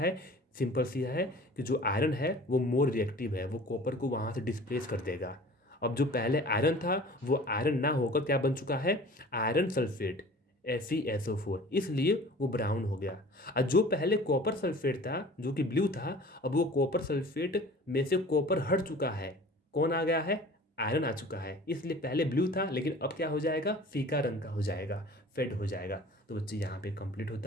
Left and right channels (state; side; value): normal; both; correlation 0.44